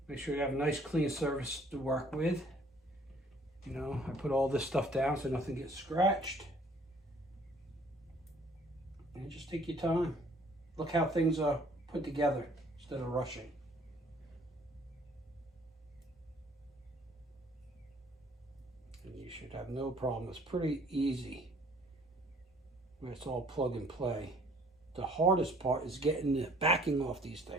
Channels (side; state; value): both; normal; correlation 0.58